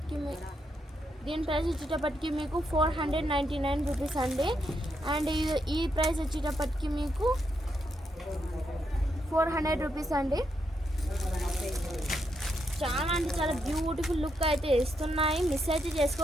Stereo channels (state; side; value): normal; both; correlation 0.80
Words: వచ్చేటప్పటికి మీకు 499 రూపీస్ అండి. అండ్ ఈ ప్రైస్ వచ్చేటప్పటికి మీకు 400 రూపీస్ అండి. చాలా అంటే చాలా బ్యూటిఫుల్ లుక్ అయితే ఇస్తున్నాయి. మిస్ అయితే